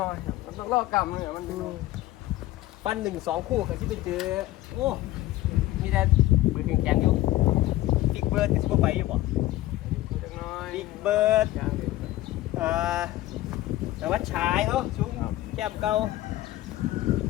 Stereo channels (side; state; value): right; quieter; 16.2 dB